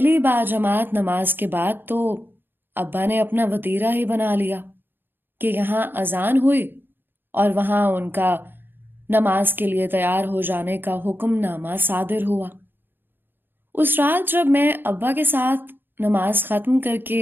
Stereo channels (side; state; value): left; late; 0.099 ms